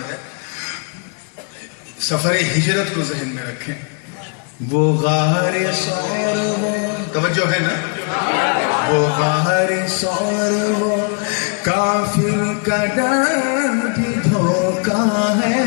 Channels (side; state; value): right; quieter; 38.2 dB